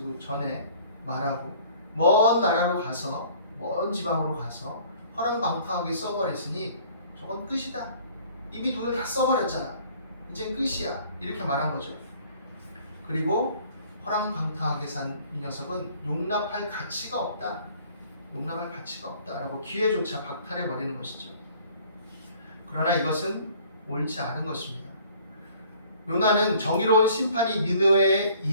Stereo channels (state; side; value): inverted; both; correlation -0.54